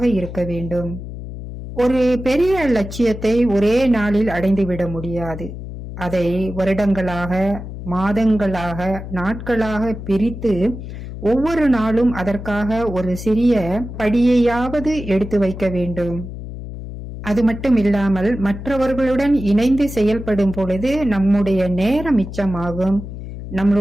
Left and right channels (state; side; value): noise; left; hum, 10 dB below the sound